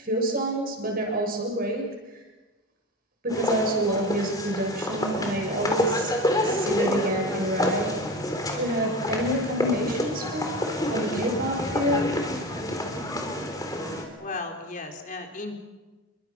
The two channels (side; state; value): both; normal; correlation 0.28